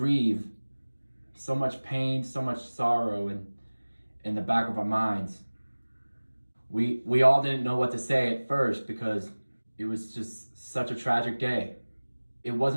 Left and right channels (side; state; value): both; inverted; correlation -1.00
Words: so much pain, so much sorrow in the back of our minds. we all didn't know what to say at first because it was just such a tragic day. It